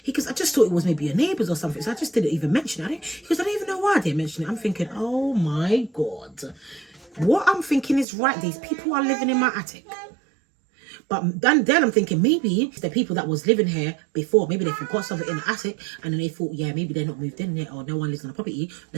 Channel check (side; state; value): left; drops out; at 8.1 s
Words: he goes, I just thought it was maybe your neighbours or something, so I just didn't even mention it. He goes, I don't even know why I didn't mention it. I'm thinking, oh my God, what I'm thinking is right. These people are living in my attic. But then I'm thinking, maybe the people that was living here before, maybe they forgot something in the attic, and then they thought, yeah, maybe they're not moved in yet, or no one lives on the property.